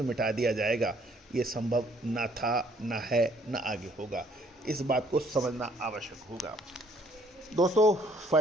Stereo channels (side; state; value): both; normal; correlation 0.63